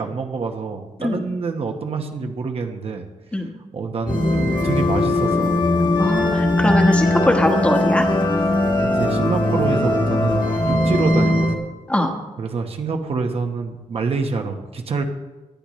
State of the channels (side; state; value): both; normal; correlation 0.81